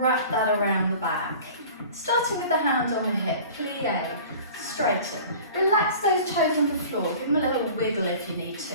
wrap that around the back. Starting with the hand on the hip, plié, straighten. Relax those toes on the floor, give them a little wiggle if you need to.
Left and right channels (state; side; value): inverted; both; correlation -0.43